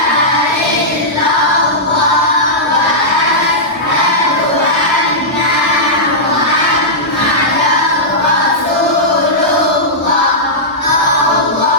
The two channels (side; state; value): both; normal; correlation -0.12